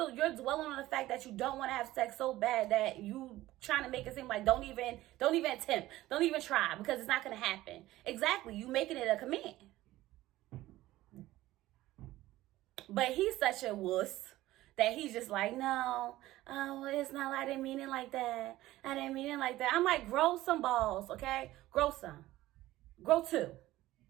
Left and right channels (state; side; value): quieter; left; 16.3 dB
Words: on the fact that you don't want to have sex so bad that you trying to make it seem like don't even attempt, don't even try, because it's not going to happen. Exactly. You making it a command. But he's such a wuss that he's just like, no, it's not, I didn't mean it like that. I'm like, grow some balls, okay? Grow some. Grow two,